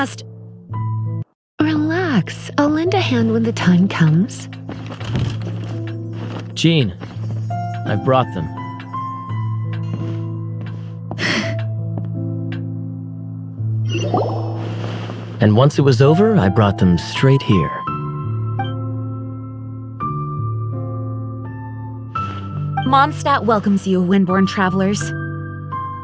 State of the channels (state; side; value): identical; both; correlation 1.00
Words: Relax. I'll lend a hand when the time comes. Jean, I've brought them. And once it was over, I brought them straight here. Mondstadt welcomes you, Windborn travelers.